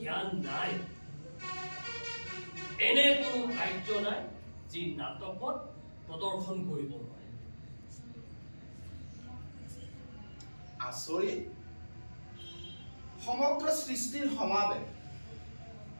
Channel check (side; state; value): both; inverted; correlation -1.00